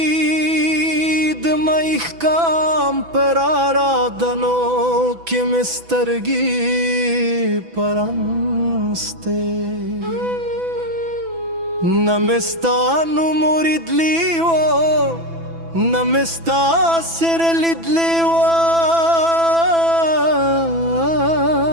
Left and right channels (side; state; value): left; late; 6.0 ms